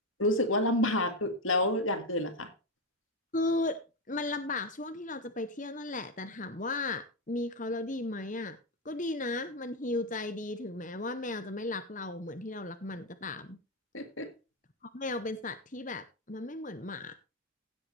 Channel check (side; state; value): both; normal; correlation 0.09